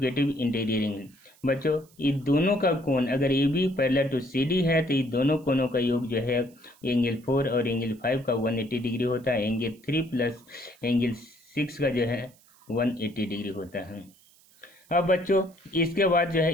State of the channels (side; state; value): right; noise; hiss, 29 dB below the sound